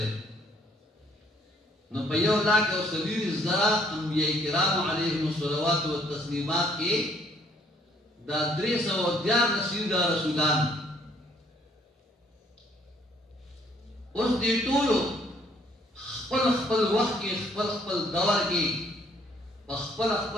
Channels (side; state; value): both; normal; correlation 0.64